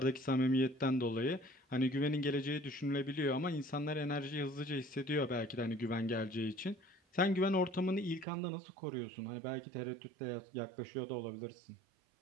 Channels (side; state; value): left; drops out; at 8.2 s